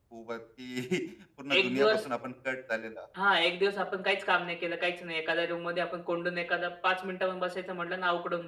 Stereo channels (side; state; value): both; identical; correlation 1.00